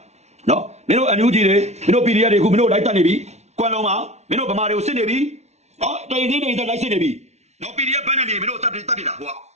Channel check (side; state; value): left; late; 0.32 ms